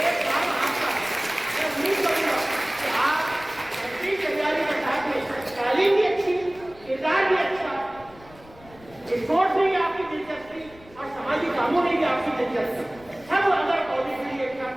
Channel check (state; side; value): noise; left; rumble, 24 dB below the sound